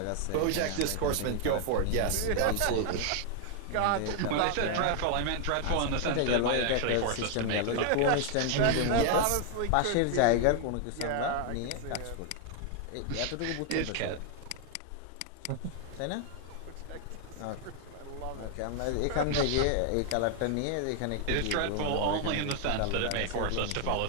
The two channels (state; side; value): different; both; correlation 0.00